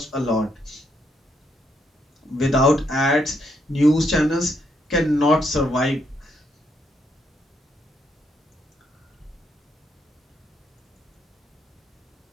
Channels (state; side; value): normal; both; correlation 0.75